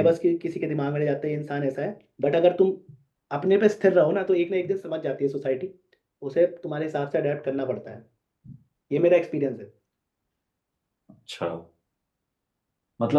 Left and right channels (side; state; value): both; identical; correlation 1.00